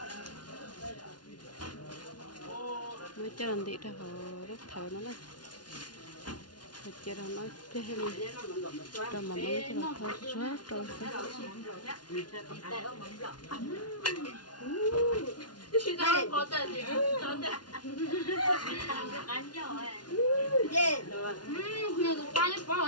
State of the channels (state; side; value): late; right; 0.70 ms